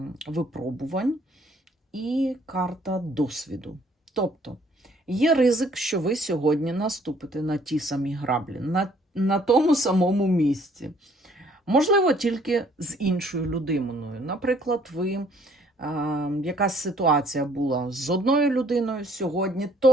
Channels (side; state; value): both; normal; correlation 0.61